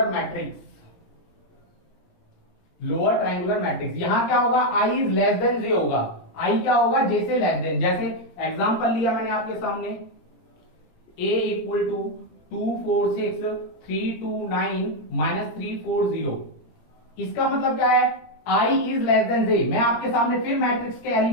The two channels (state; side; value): late; right; 17 ms